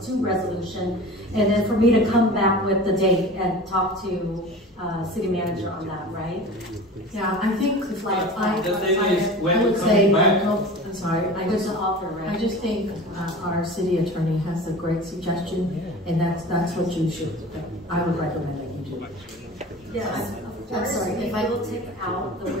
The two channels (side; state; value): both; normal; correlation 0.36